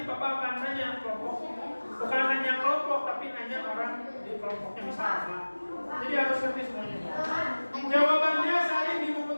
Bapak akan nanya kelompok. Bukan nanya kelompok tapi nanya orang di kelompoknya bisa apa. Jadi harus ngerti semuanya. Jawabannya salin di buku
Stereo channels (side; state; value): both; inverted; correlation -1.00